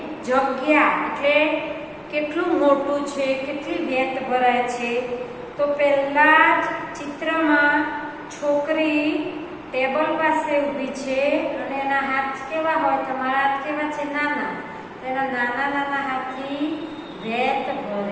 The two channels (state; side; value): identical; both; correlation 1.00